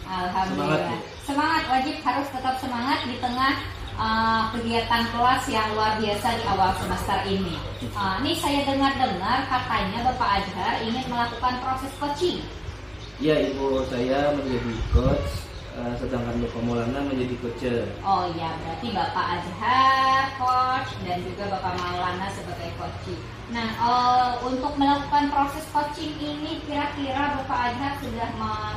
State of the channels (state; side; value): identical; both; correlation 1.00